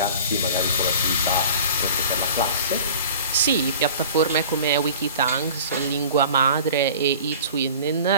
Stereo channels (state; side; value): inverted; both; correlation -0.41